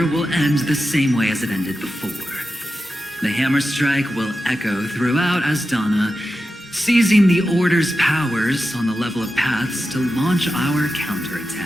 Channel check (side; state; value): both; normal; correlation 0.91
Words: will end the same way as it ended before. The hammer strike will echo throughout Asdana, seizing the Order's powers on the level of paths to launch our